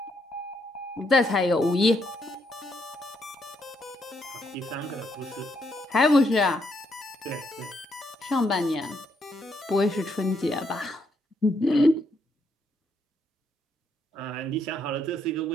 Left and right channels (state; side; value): normal; both; correlation 0.75